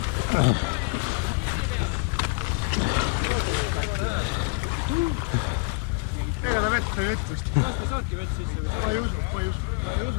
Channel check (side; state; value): right; quieter; 29.4 dB